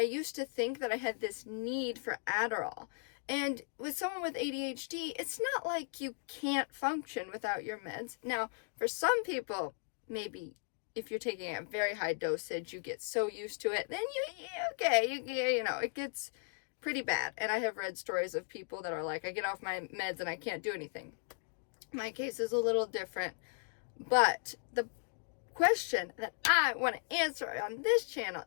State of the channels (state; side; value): silent; right; 53 dB below the other